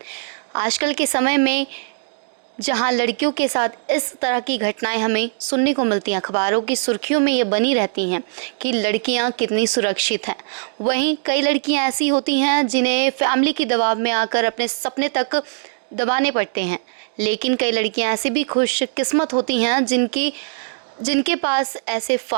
आजकल के समय में जहाँ लड़कियों के साथ इस तरह की घटनाएं हमें सुनने को मिलती हैं, अखबारों की सुर्खियों में ये बनी रहती हैं कि लड़कियां कितनी सुरक्षित हैं। वहीं कई लड़कियां ऐसी होती हैं जिन्हें फैमिली के दबाव में आकर अपने सपने तक दबाने पड़ते हैं। लेकिन कई लड़कियां ऐसी भी खुशकिस्मत होती हैं जिनके पास ऐसे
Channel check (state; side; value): silent; left; digital silence